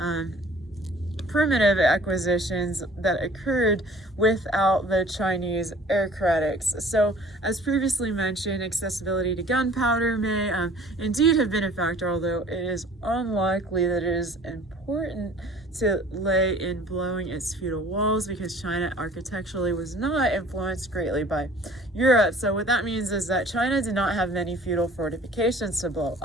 primitive acquisitions that occurred without the Chinese aristocrats. So, as previously mentioned, accessibility to gunpowder may indeed have been a factor, although it is unlikely that it is important to lay in blowing its feudal walls, because China architecturally was not influenced greatly by Europe. So what that means is that China did not have many feudal fortifications to blow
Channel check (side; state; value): both; normal; correlation 0.50